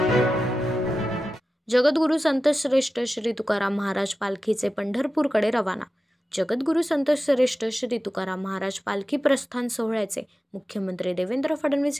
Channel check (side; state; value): both; normal; correlation 0.93